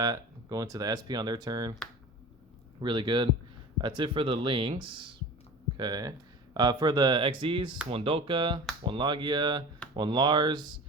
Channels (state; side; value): normal; both; correlation 0.36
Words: go into the SP on their turn. Really good. That's it for the links. Okay. For the XZs, one Dolka, one Logia, one Lars.